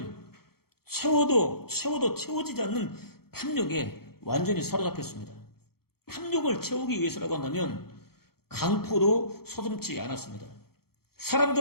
채워도 채워지지 않는 탐욕에 완전히 사로잡혔습니다. 탐욕을 채우기 위해서라고 한다면 강포도 서슴지 않았습니다.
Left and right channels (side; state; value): right; late; 0.95 ms